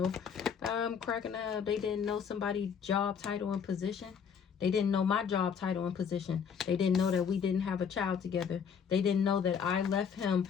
I'm cracking up. They didn't know somebody's job, title, and position. They didn't know my job, title, and position. They didn't know that we didn't have a child together. They didn't know that I left him.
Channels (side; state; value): right; quieter; 7.0 dB